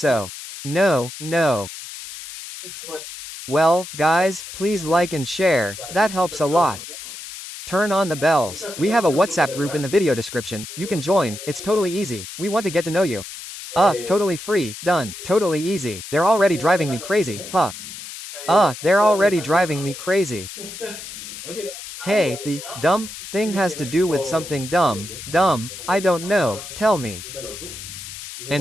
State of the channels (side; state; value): left; noise; hiss, 11 dB below the sound